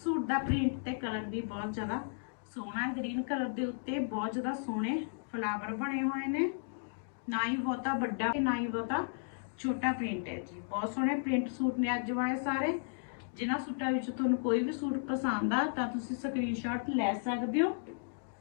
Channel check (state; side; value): silent; right; digital silence